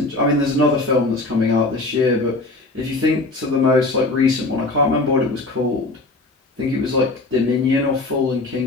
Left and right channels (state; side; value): quieter; right; 3.1 dB